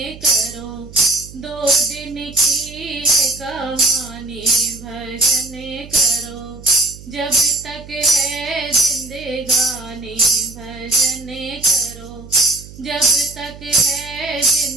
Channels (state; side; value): noise; right; hum, 17 dB below the sound